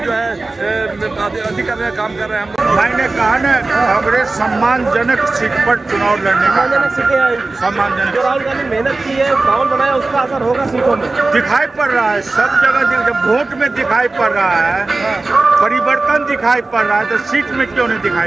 जो है अति करने का काम कर रहे हैं। मैंने कहा ना, कांग्रेस सम्मानजनक सीट पर चुनाव लड़ने का सम्मानजनक। राहुल गांधी मेहनत की है, माहौल बनाया, उसका असर होगा सीटों में, दिखाई पड़ रहा है सब जगह। जब वोट में दिखाई पड़ रहा है, परिवर्तन दिखाई पड़ रहा है, तो सीट में क्यों नहीं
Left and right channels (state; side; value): quieter; left; 3.4 dB